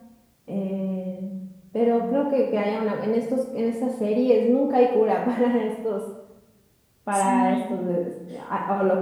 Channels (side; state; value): both; identical; correlation 1.00